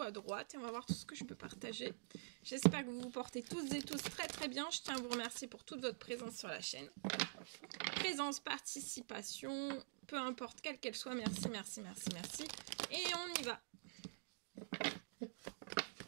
droite. Et on va voir tout ce que je peux partager. J'espère que vous vous portez toutes et tous très très bien. Je tiens à vous remercier pour toute votre présence sur la chaîne. Présence, participation, peu importe quelle qu'elle soit. Merci, merci, merci, merci. Et on y va.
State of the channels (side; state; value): left; silent; digital silence